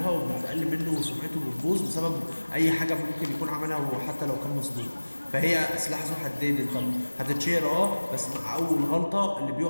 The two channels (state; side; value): inverted; both; correlation -1.00